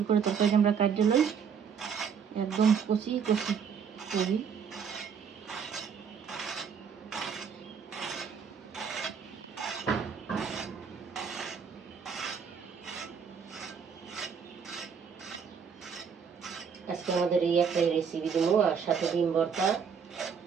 করে তরকারি আমরা কাটে লই, একদম কচি কচি করি। আজকে আমাদের এই একটা রেসিপি দেবো, আর সাথে ডিম ভর্তা।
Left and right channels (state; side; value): quieter; left; 6.7 dB